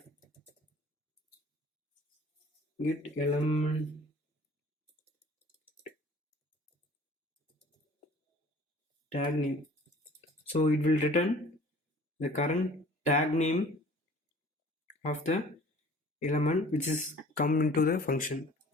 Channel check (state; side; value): normal; both; correlation 0.49